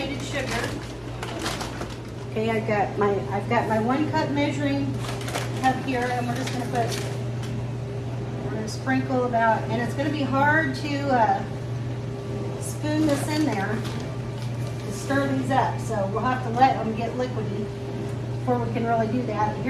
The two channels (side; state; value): both; identical; correlation 1.00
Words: sugar. Okay, I've got my 1 cup measuring cup here, and we're just going to sprinkle about, and it's going to be hard to spoon this in there to stir these up, so we'll have to let them get liquidy before we can really do that.